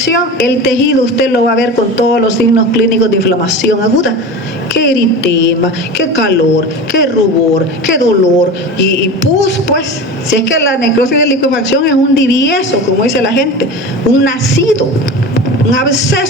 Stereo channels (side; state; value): both; normal; correlation 0.30